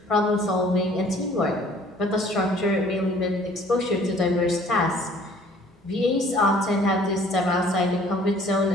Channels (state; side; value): normal; both; correlation 0.55